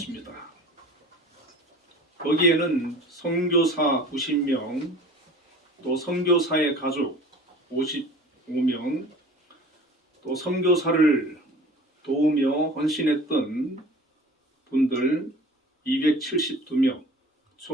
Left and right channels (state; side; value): normal; both; correlation 0.43